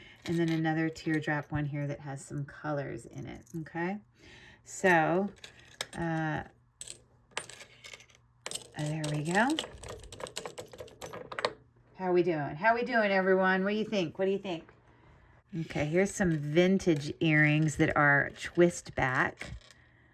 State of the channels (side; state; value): both; identical; correlation 1.00